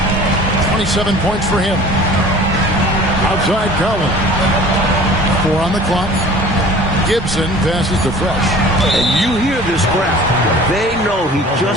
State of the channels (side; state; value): both; normal; correlation 0.45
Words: 27 points for him. Outside Collins. 4 on the clock. Gibson passes to Fresh. And you hear this crowd. They know he